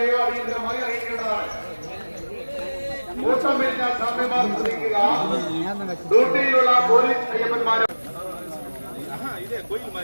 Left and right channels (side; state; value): both; inverted; correlation -1.00